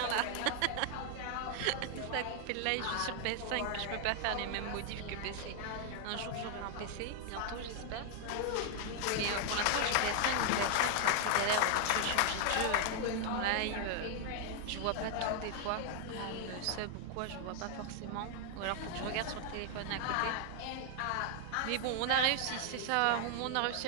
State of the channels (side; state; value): both; different; correlation 0.00